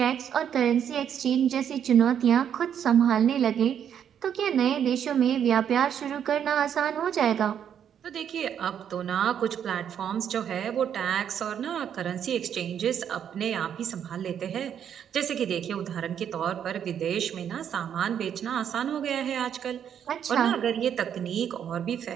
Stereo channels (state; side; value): quieter; left; 8.8 dB